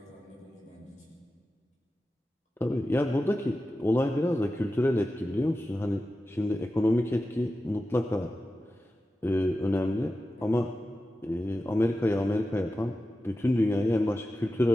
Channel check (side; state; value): both; normal; correlation 0.93